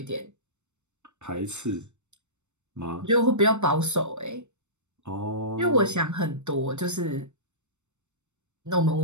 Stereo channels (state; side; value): late; left; 0.83 ms